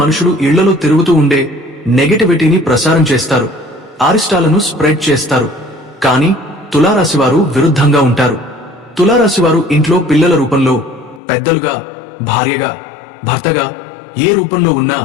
ఇళ్లలో తిరుగుతూ ఉండే నెగటివిటీని ప్రసారం చేస్తారు, అరిష్టాలను స్ప్రెడ్ చేస్తారు. కానీ తులారాశివారు విరుద్ధంగా ఉంటారు. తులారాశివారు ఇంట్లో పిల్లల రూపంలో, పెద్దలుగా, భార్యగా, భర్తగా ఏ రూపంలో ఉన్నా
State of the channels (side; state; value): right; drops out; at 11.2 s